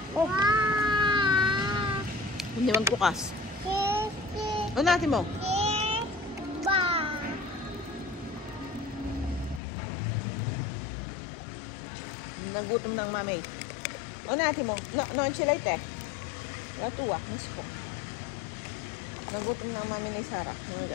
Oh. Hindi magbukas. O natin mo. Nagutom ng mami. O natin mo. No, enchilate eh. Natuwa. Mas po. Nagutom ng mami ni Sarah. Mga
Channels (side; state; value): right; drops out; at 9.6 s